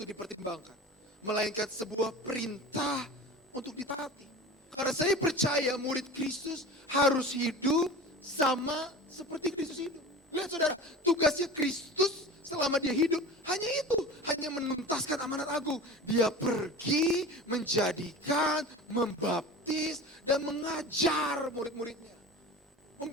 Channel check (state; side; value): normal; both; correlation 0.34